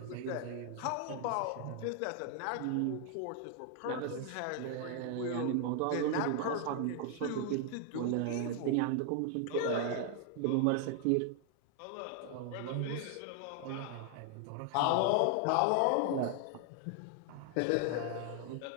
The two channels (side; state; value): both; different; correlation 0.00